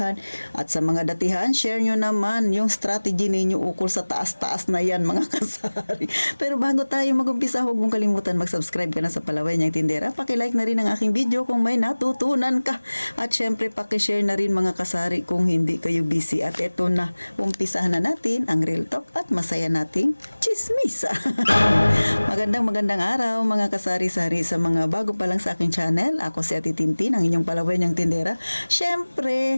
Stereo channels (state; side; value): inverted; both; correlation -1.00